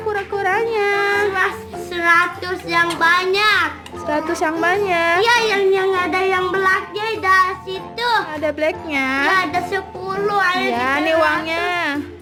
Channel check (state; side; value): identical; both; correlation 1.00